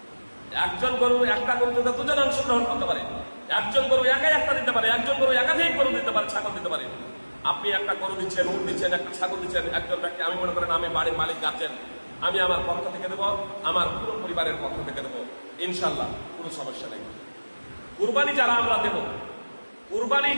একজন গরু একটা গরুতে 2 জন অংশগ্রহণ করতে পারে, একজন গরু একাই একটা দিতে পারে, একজন গরু একাধিক গরু দিতে পারে, ছাগল দিতে পারে। আপনি একটা গরু দিচ্ছেন, উট দিচ্ছেন, একটা ছাগল দিচ্ছেন, একজন ব্যক্তি, আমি মনে করেন আমি বাড়ির মালিক গার্জেন, আমি আমার পক্ষ থেকে দেবো, আমার পুরো পরিবারের পক্ষ থেকে দেবো, ইনশাল্লাহ কোনো সমস্যা নেই। কুরবানি যারা আমরা দেব,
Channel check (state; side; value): inverted; both; correlation -1.00